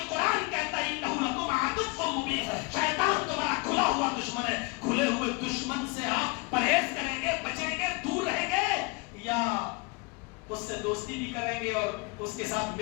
قرآن کہتا ہے انہ لکم عدو مبین، شیطان تمہارا کھلا ہوا دشمن ہے۔ کھلے ہوئے دشمن سے آپ پرہیز کریں گے، بچیں گے، دور رہیں گے، یا اس سے دوستی بھی کریں گے اور اس کے ساتھ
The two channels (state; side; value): quieter; right; 28.1 dB